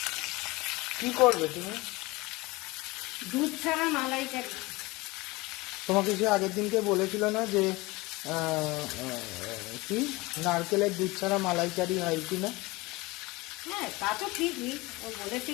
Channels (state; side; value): quieter; right; 22.5 dB